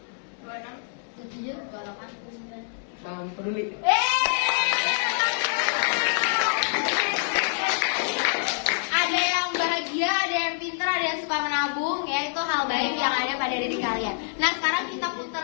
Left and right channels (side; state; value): right; silent; digital silence